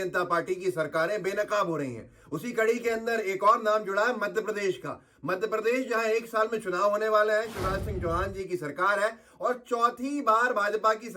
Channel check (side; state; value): both; identical; correlation 1.00